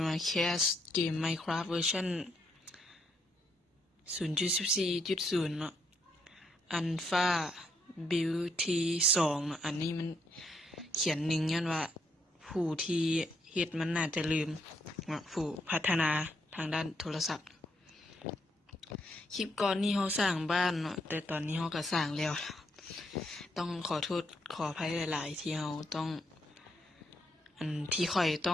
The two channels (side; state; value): both; normal; correlation 0.76